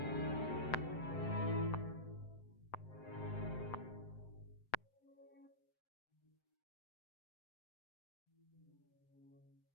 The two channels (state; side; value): late; right; 7.7 ms